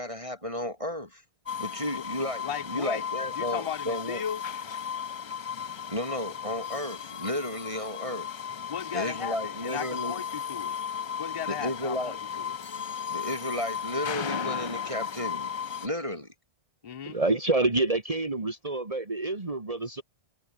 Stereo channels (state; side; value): late; left; 1.3 ms